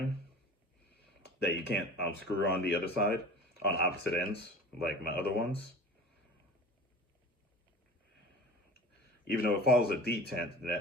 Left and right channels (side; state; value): both; normal; correlation 0.38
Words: that you can't screw on the other side on opposite ends like my other ones. Even though it follows a detent,